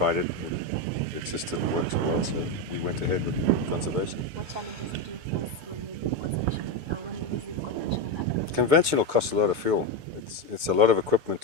it. It just didn't work so well, so we went ahead with conservation. What challenges did you face when you do conservation or when you're using conventional agriculture? Conventional costs a lot of fuel. It's a lot of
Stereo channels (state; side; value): late; left; 6.8 ms